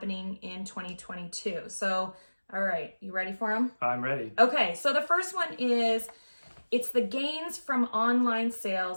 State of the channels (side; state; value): both; inverted; correlation -1.00